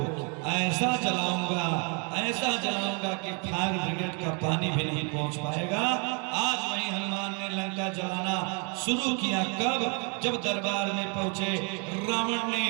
ऐसा जलाऊंगा, ऐसा जलाऊंगा कि फायर ब्रिगेड का पानी भी नहीं पहुंच पाएगा। आज वही हनुमान ने लंका जलाना शुरू किया। कब? जब दरबार में पहुंचे, रावण ने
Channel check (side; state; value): left; quieter; 35.6 dB